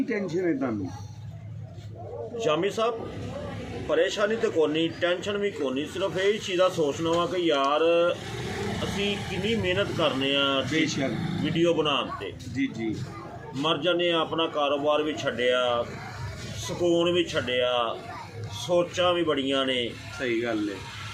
ਟੈਨਸ਼ਨ ਹੈ ਤੁਹਾਨੂੰ? शामी साहब परेशानी तो कोनी, टेंशन भी कोनी, सिर्फ यही चीज़ का सोचना वा कि यार असी कितनी मेहनत करने बेशक वीडियो बनाने जी जी मर जाने, अपना कारोबार भी छड्डिया, सुकून भी छड्डिया, सोचा भी बड़ियां ने। सही गल है।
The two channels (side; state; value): both; identical; correlation 1.00